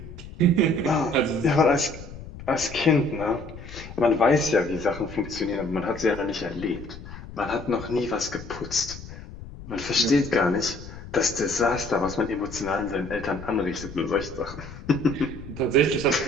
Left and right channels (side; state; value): left; noise; rumble, 14 dB below the sound